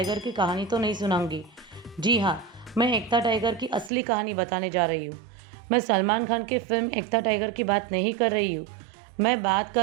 की कहानी तो नहीं सुनाऊंगी। जी हाँ, मैं एक था टाइगर की असली कहानी बताने जा रही हूँ। मैं सलमान खान की फिल्म एक था टाइगर की बात नहीं कर रही हूँ। मैं बात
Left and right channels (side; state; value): left; drops out; at 3.9 s